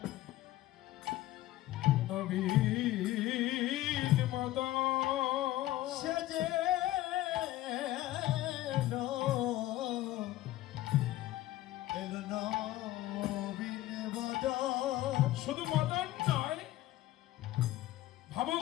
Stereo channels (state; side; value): quieter; right; 15.5 dB